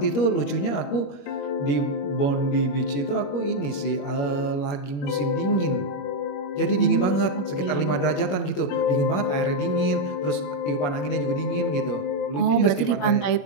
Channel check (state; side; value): late; right; 21 ms